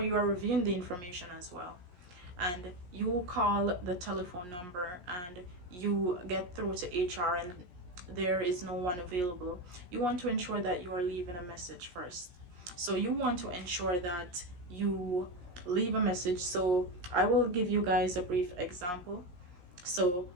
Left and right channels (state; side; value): late; left; 17 ms